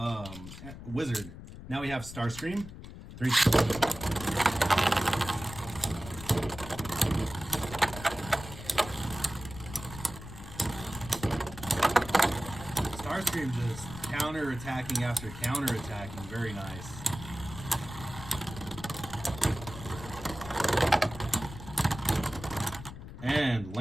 Wizard. Now we have Starscream. 3, 2. Starscream just counter-attacking after counter-attacking. Very nice. And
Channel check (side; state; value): left; noise; rumble, 13 dB below the sound